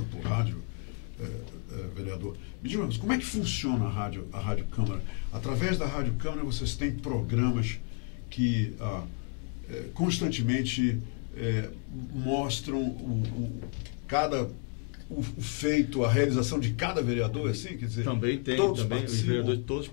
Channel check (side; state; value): right; quieter; 37.2 dB